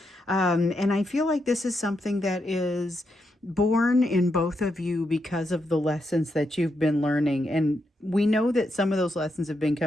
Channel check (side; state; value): both; normal; correlation 0.82